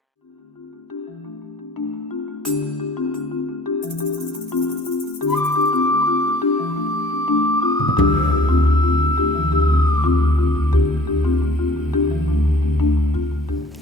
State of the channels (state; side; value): normal; both; correlation 0.53